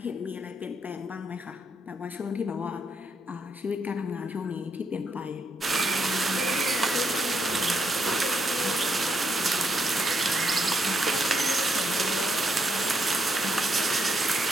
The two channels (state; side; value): normal; both; correlation 0.77